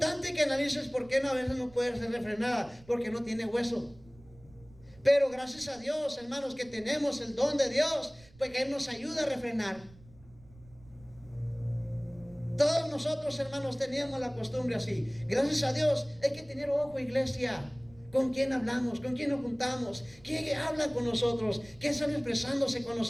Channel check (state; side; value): noise; right; rumble, 24 dB below the sound